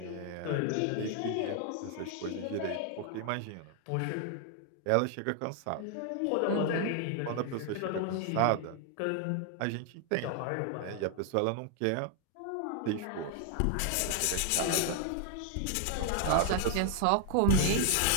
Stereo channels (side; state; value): both; different; correlation 0.00